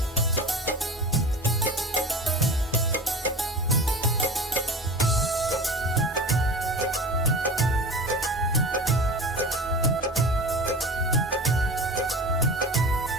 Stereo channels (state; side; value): normal; both; correlation 0.34